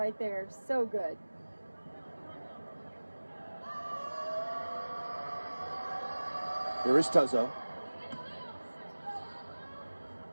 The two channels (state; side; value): inverted; both; correlation -1.00